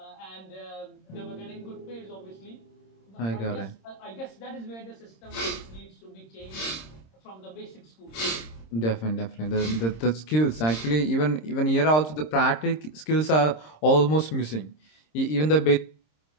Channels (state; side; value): late; right; 26 ms